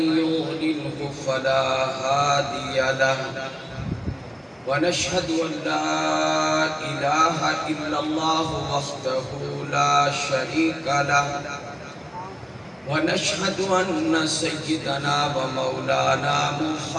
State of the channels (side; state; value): both; identical; correlation 1.00